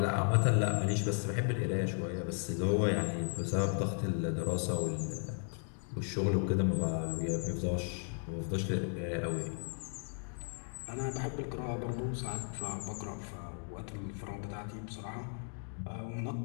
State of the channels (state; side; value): silent; right; 54 dB below the other